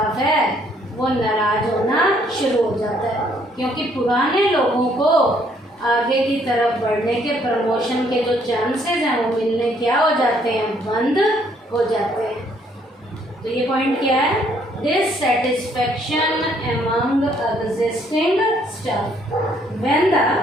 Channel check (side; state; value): both; normal; correlation 0.66